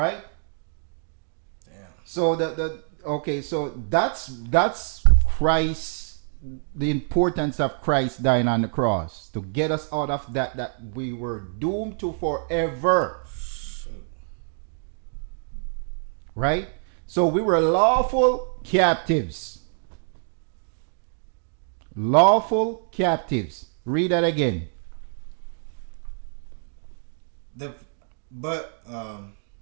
Damn. So so that's Christ, the importance of Christ dying on the cross to get us out of that we were doomed to forever. Shoot. Right? So we were lawful captives. Lawful captives. Read that again.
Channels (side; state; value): left; silent; digital silence